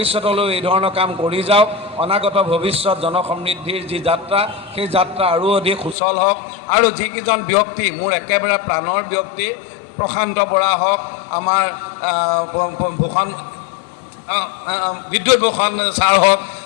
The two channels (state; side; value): drops out; right; at 6.0 s